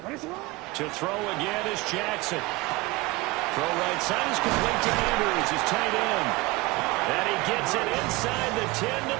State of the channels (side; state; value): left; quieter; 22.1 dB